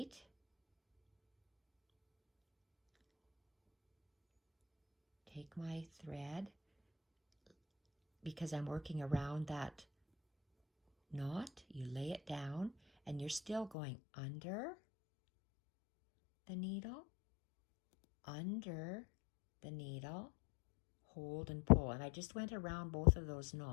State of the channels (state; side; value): drops out; right; at 13.7 s